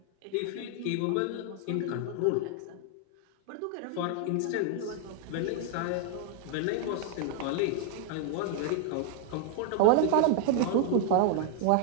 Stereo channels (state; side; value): different; both; correlation 0.00